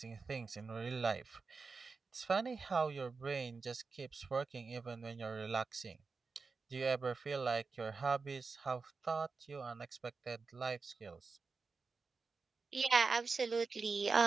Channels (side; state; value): left; quieter; 4.5 dB